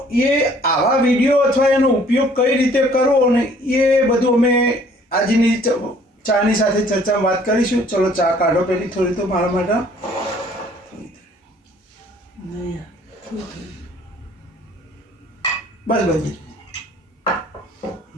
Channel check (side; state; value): both; normal; correlation 0.57